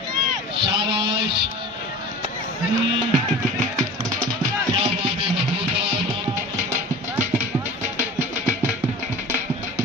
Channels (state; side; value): normal; both; correlation 0.39